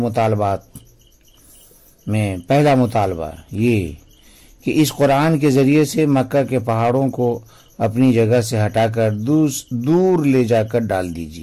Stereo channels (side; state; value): both; identical; correlation 1.00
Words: میں پہلا مطالبہ یہ کہ اس قرآن کے ذریعے سے مکہ کے پہاڑوں کو اپنی جگہ سے ہٹا کر دور لے جا کر ڈال